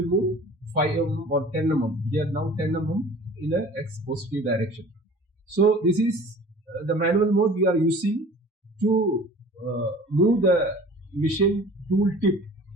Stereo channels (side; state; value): both; normal; correlation 0.45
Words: move 5 mm or 10 mm. Here now 10 mm in a X positive direction. So this is the manual mode we are using to move the machine tool tip